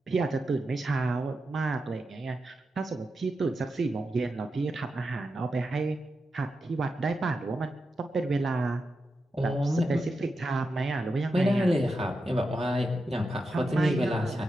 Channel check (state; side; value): normal; both; correlation 0.88